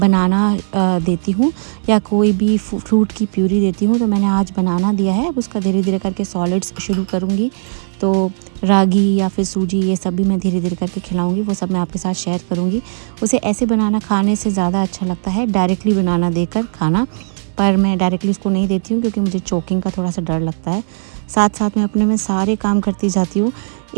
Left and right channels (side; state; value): left; silent; 68 dB below the other